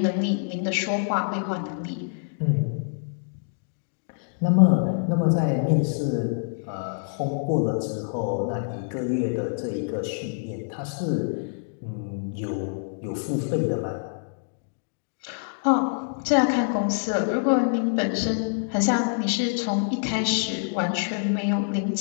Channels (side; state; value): right; silent; digital silence